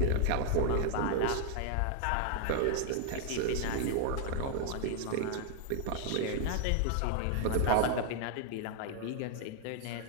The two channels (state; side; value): different; both; correlation 0.00